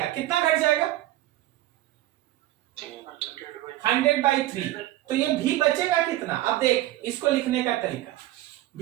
कितना घट जाएगा? 100/3। तो ये भी बचेगा कितना? अब देख इसको लिखने का तरीका,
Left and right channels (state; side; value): quieter; left; 15.5 dB